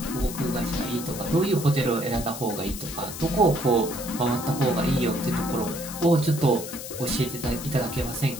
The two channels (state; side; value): noise; left; hiss, 10 dB below the sound